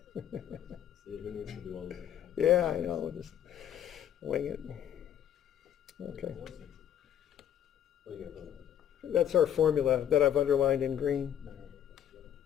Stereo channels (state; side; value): quieter; right; 10.1 dB